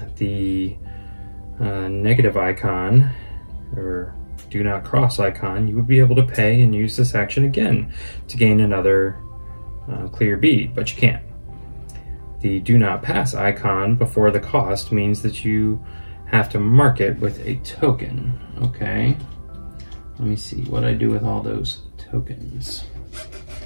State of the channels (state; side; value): inverted; both; correlation -1.00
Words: the negative icon, or do not cross icon, you would be able to pay and use this action again to gain another clear bead, but you can't. The do not pass icon before the cost means that you have to mark it with a token. Okay, let me see what I do with all those tokens.